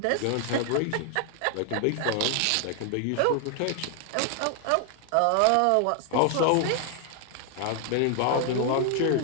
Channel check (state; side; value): different; both; correlation 0.00